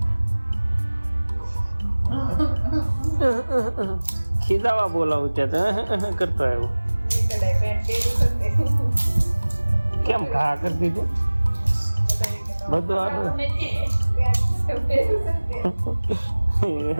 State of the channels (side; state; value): both; inverted; correlation -1.00